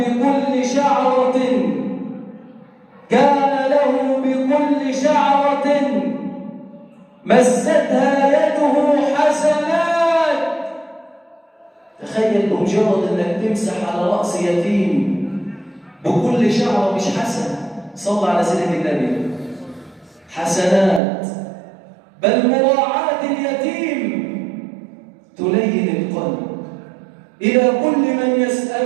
شعرة مستها يده حسنات. تخيل بمجرد انك تمسح على رأس يتيم بكل شعرة مش حسنة، صلى على سيدنا النبي، حسنات. بل مراعاة اليتيم تلين القلب. إلى كل من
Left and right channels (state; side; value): drops out; left; at 21.0 s